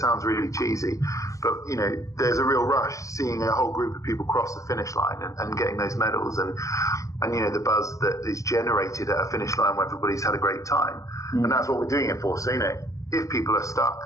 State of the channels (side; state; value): right; late; 0.16 ms